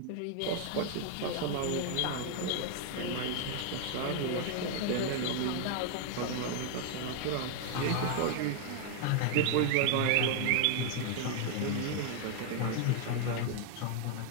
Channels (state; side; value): different; both; correlation 0.00